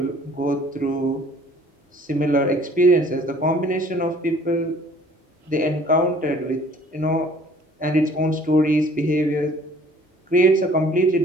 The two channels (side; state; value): both; normal; correlation 0.54